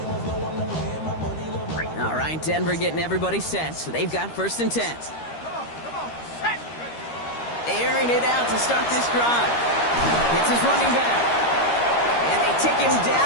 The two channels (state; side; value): late; right; 13 ms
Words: All right, Denver getting everybody set. So they've got 1st and 10. Airing it out to start this drive. It's his running back. And they take him